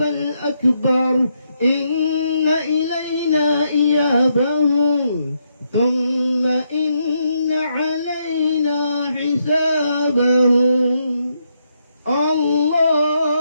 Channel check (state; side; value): inverted; both; correlation -0.79